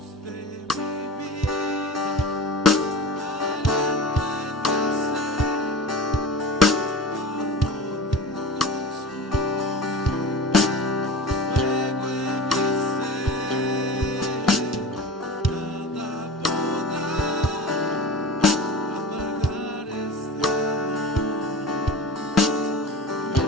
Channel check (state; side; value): normal; both; correlation 0.34